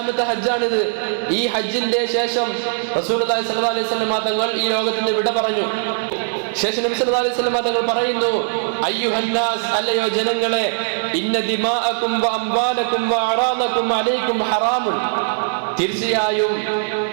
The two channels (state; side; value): silent; left; digital silence